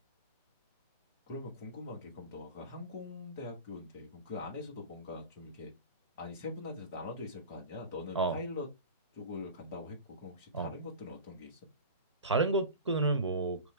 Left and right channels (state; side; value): inverted; both; correlation -0.32